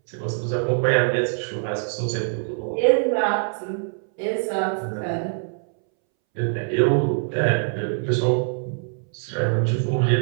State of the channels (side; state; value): left; silent; 63 dB below the other